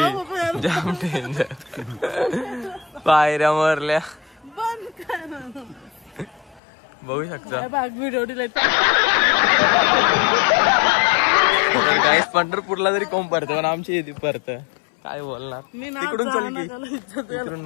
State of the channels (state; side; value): drops out; right; at 6.6 s